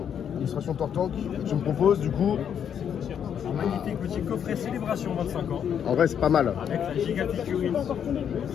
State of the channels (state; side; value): quieter; right; 8.5 dB